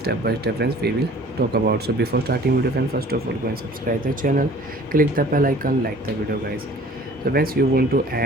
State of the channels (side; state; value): both; normal; correlation 0.49